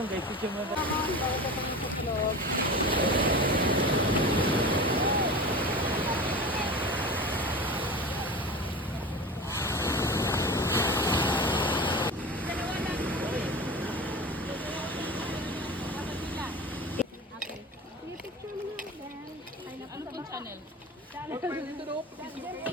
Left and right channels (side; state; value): both; normal; correlation 0.31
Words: guys, picture mo na. ano pong channel?